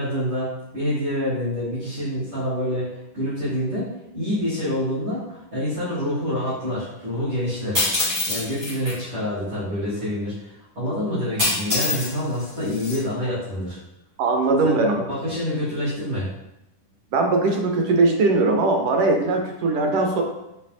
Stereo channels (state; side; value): late; left; 10 ms